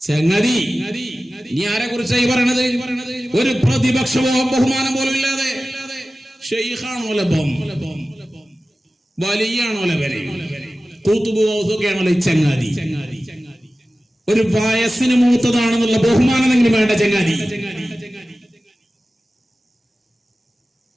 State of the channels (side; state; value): both; normal; correlation 0.96